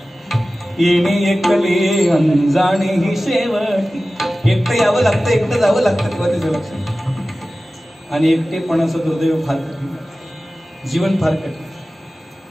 येणे एकले अनजाणे ही शेवटी. एकटं यावं लागतं, एकटं जावं लागतं तेव्हा त्याचं लक्षात. आणि एकटेपणाचं दुर्दैव फार कठीण, जीवन फार कठीण.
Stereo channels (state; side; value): normal; both; correlation 0.96